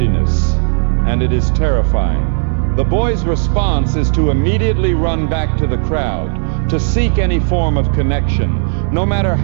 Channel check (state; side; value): silent; left; digital silence